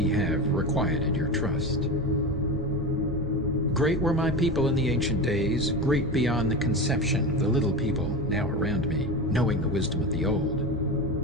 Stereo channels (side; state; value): both; normal; correlation 0.23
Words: have requited your trust. Great were my people in the ancient days, great beyond the conception of the little people now around me, knowing the wisdom of the old,